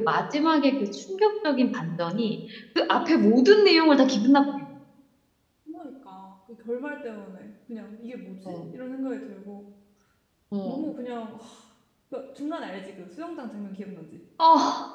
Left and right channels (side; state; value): both; identical; correlation 1.00